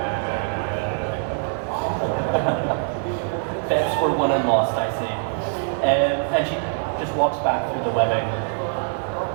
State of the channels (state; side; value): silent; left; 60 dB below the other